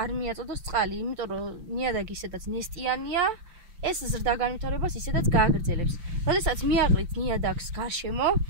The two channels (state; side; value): late; left; 5.8 ms